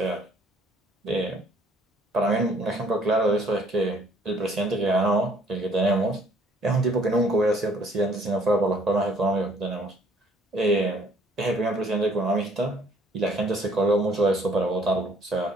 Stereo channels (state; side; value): normal; both; correlation 0.61